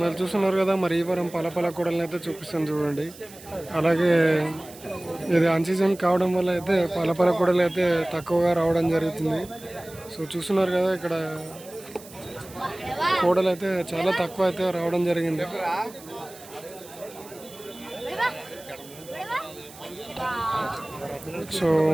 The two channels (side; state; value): right; noise; hiss, 19 dB below the sound